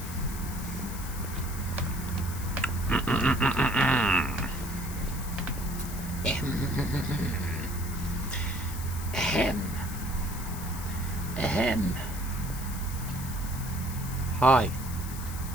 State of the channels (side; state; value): left; noise; hiss, 11 dB below the sound